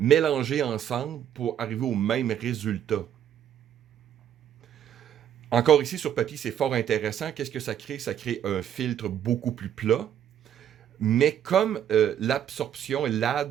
ensemble pour arriver au même résultat. Encore ici, sur papier, c'est fort intéressant. Qu'est-ce que ça crée? Ça crée un filtre beaucoup plus plat. Mais comme l'absorption et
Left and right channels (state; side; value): quieter; left; 9.8 dB